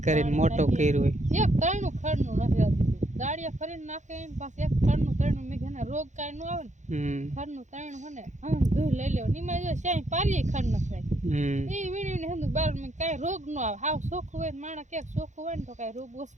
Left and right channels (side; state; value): left; late; 0.35 ms